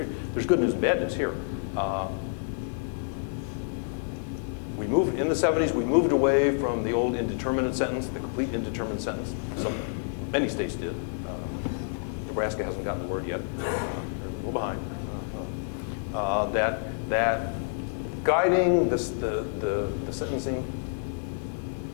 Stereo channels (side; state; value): right; silent; digital silence